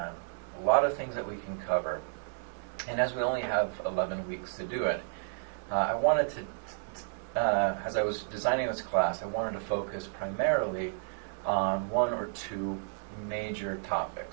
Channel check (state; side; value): silent; left; digital silence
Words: a lot of things that we can cover, and as we only have 11 weeks to do it, I wanted to, as I was designing this class, I wanted to focus primarily on one or two major